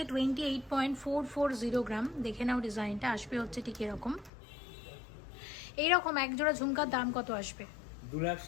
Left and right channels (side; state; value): right; drops out; at 4.3 s